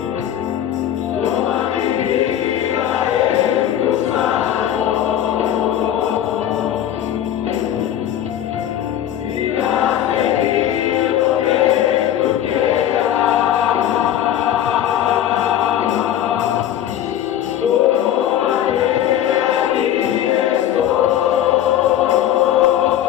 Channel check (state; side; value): quieter; right; 11.2 dB